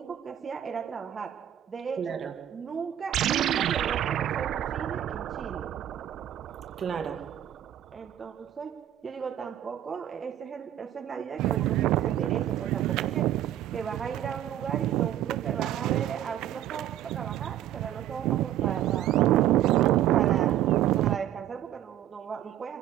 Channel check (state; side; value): quieter; left; 11.7 dB